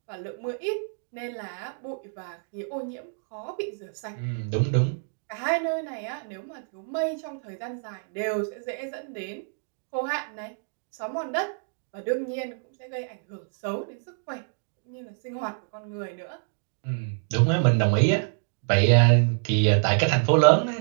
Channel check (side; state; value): left; silent; digital silence